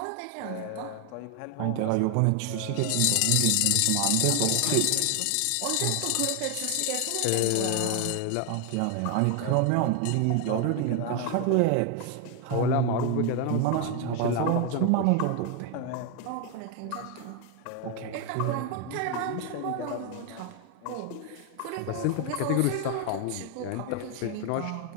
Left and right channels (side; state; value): both; different; correlation 0.01